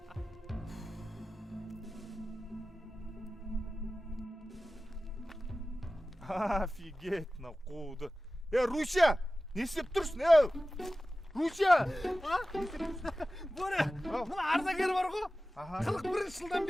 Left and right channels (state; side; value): normal; both; correlation 0.96